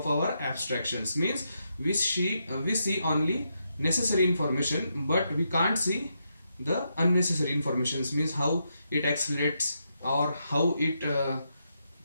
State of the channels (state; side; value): inverted; both; correlation -0.82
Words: our abstractions. Means we see only necessary information, but we can't see the unnecessary informations. Means how it accelerates or how it